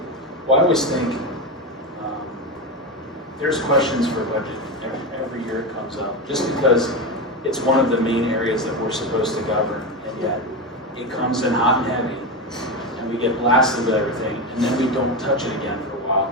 Well, I always think there's questions for budget every year it comes up, just because it's one of the main areas that we're supposed to govern, and yet it comes in hot and heavy, and we get blasted with everything, and then we don't touch it again for a while,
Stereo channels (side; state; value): both; normal; correlation 0.16